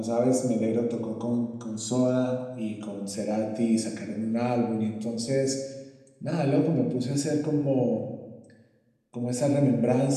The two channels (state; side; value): identical; both; correlation 1.00